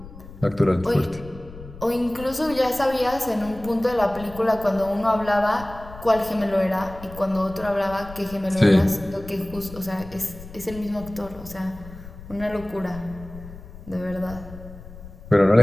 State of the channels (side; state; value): left; noise; rumble, 16 dB below the sound